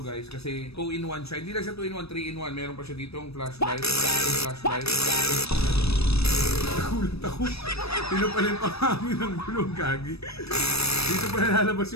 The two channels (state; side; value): late; right; 0.78 ms